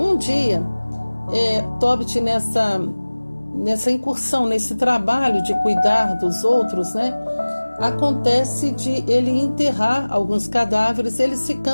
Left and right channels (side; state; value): both; inverted; correlation -1.00